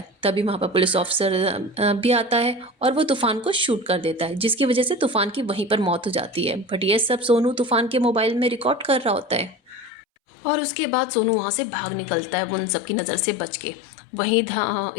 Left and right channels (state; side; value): drops out; right; at 9.9 s